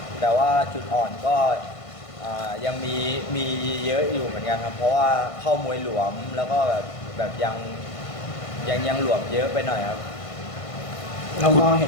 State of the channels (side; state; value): right; late; 1.5 ms